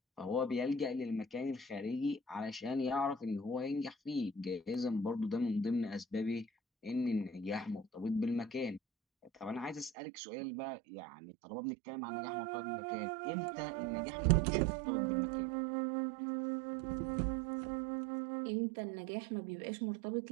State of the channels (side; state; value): left; drops out; at 9.9 s